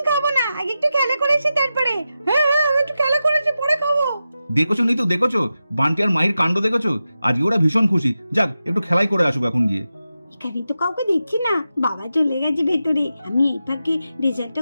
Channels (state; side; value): inverted; both; correlation -0.91